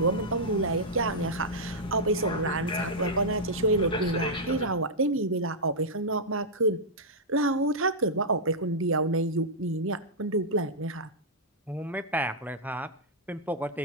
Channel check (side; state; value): both; normal; correlation -0.08